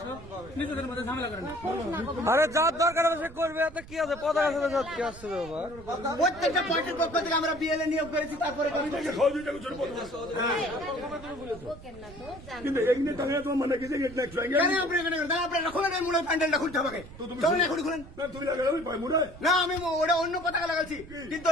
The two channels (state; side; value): noise; right; rumble, 17 dB below the sound